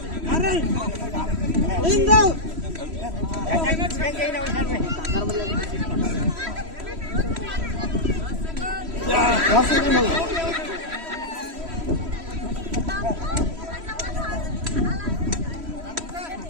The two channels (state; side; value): late; left; 3.1 ms